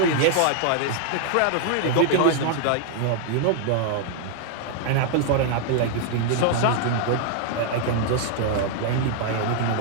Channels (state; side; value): different; both; correlation 0.00